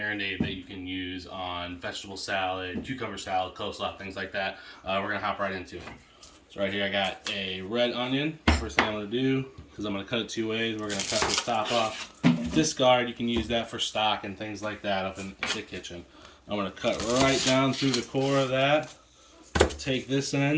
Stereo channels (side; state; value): both; identical; correlation 1.00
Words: that you can use on vegetable salad, cucumber salad, coleslaw, things like that. We're going to hop right into it. So right here I got a red onion. First thing I'm going to do, because I'm going to cut it two ways, we're going to cut the top off. Discard, you can use that for stock and things like that up in the kitchen. I'm going to cut right down through the core of that. Take this